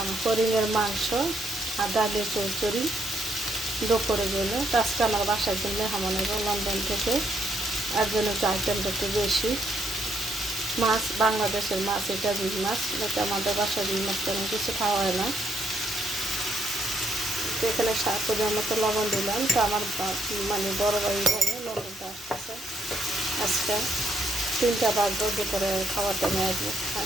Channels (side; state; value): both; normal; correlation 0.73